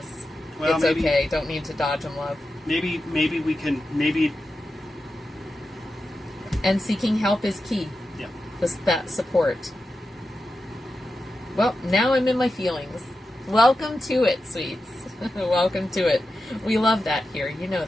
Well, it's maybe, okay. Don't need to dodge them, love. Maybe we can, And seeking help is key. Yeah. That support. Well, now I'm in my feelings. Welcome to it, sweets. Welcome to it. We love that here. You know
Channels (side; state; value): both; normal; correlation 0.90